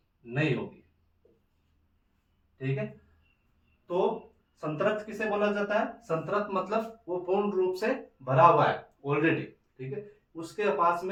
नहीं होगी, ठीक है। तो संतृप्त किसे बोला जाता है, संतृप्त मतलब वो पूर्ण रूप से भरा हुआ है ऑलरेडी, ठीक है, उसके पास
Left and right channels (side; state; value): both; identical; correlation 1.00